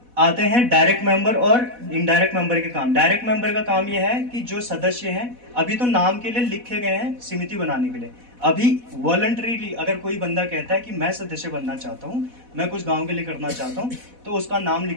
आते हैं डायरेक्ट मेंबर और इनडायरेक्ट मेंबर के काम। डायरेक्ट मेंबर का काम यह है कि जो सदस्य हैं, अभी तो नाम के लिए लिखे गए हैं समिति बनाने के लिए, अभी वॉलंटरीली अगर कोई बंदा कहता है कि मैं सदस्य बनना चाहता हूं, मैं कुछ गांव के लिए करना चाहता हूं, तो उसका नाम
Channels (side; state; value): left; late; 4.1 ms